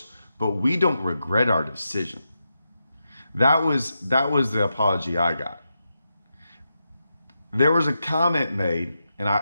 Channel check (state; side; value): inverted; both; correlation -0.87